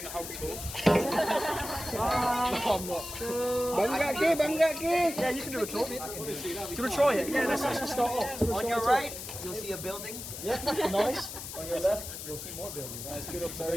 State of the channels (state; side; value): noise; left; hiss, 9 dB below the sound